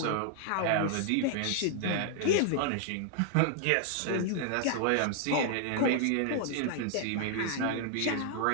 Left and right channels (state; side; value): different; both; correlation 0.00